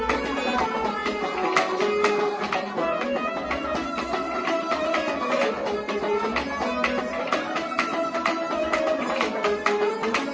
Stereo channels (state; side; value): identical; both; correlation 1.00